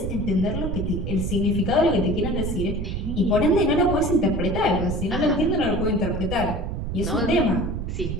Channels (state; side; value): noise; right; rumble, 4 dB below the sound